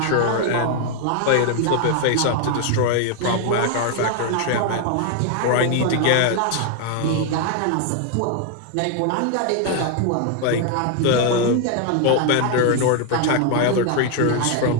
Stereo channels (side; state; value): both; different; correlation 0.00